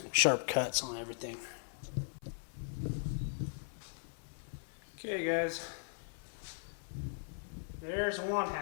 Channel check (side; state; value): right; silent; 52 dB below the other